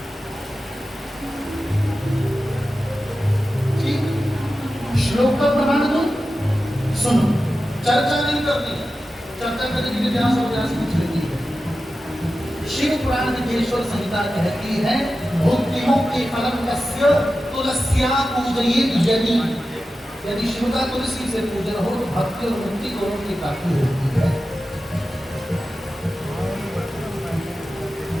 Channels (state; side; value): normal; both; correlation 0.93